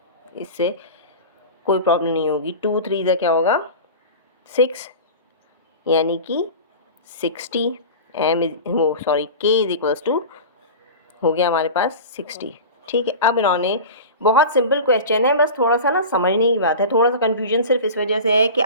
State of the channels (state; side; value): inverted; both; correlation -0.33